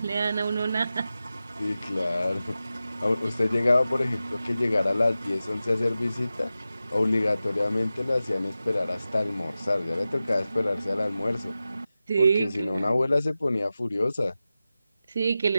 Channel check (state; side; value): inverted; both; correlation -0.94